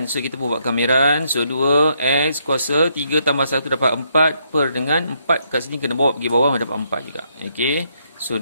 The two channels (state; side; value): inverted; both; correlation -0.74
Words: So kita pun buat kameran. So 2x kuasa 3 tambah 1 dapat 4 per dengan 4 kat sini kena bawa pergi bawah dapat 4 juga. Okey. So